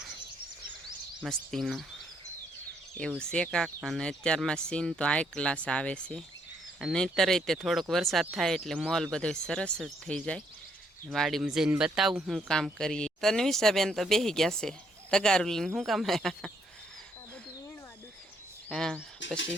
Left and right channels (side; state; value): both; normal; correlation 0.71